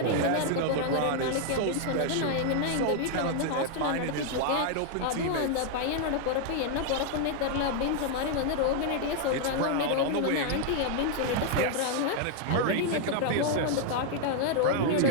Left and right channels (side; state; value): both; different; correlation 0.00